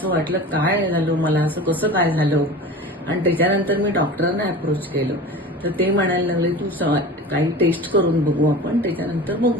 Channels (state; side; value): normal; both; correlation 0.35